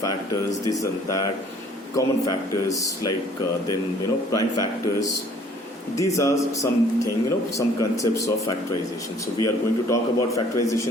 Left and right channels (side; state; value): both; normal; correlation 0.56